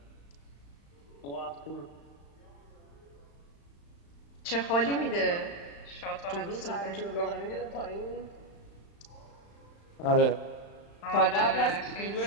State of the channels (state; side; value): late; right; 35 ms